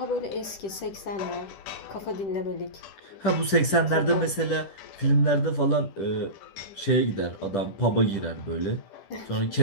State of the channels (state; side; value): late; right; 10 ms